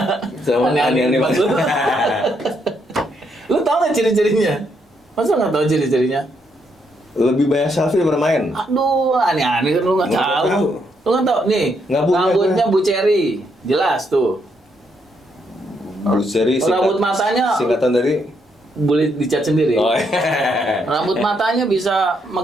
Aneh-aneh Mas lu. Lu tau nggak ciri-cirinya? Masa nggak tahu ciri-cirinya? Lebih banyak selfie daripada main. Aduh, aneh-aneh kan lu nggak Nggak tahu. tahu. Lu nggak tahu nih. Nggak punya Rambutnya Bu Cherry, jelas tuh. Bruce Cherry Rambut matanya singkatan dari boleh dicat sendiri. oh, iya. Rambut matanya bisa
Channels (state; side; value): normal; both; correlation 0.76